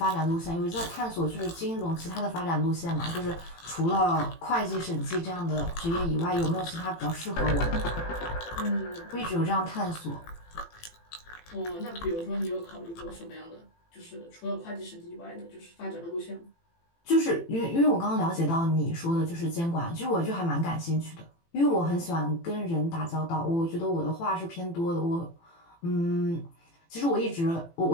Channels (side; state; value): right; late; 18 ms